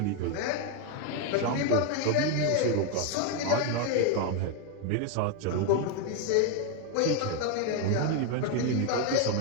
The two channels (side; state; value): both; different; correlation 0.01